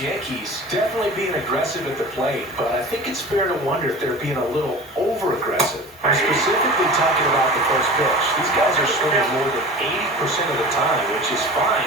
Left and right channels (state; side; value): normal; both; correlation 0.36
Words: definitely being aggressive at the plate, but I think it's fair to wonder if they're being a little over-aggressive. I'm specifically talking about the first pitch. These guys are swinging more than 80% of the time, which is fine